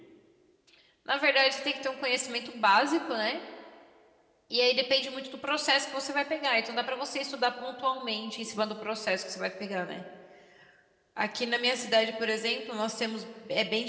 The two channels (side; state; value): both; identical; correlation 1.00